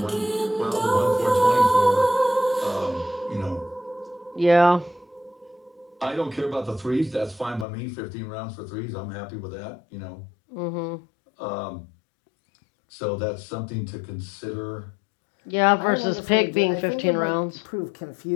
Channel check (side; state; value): right; drops out; at 7.7 s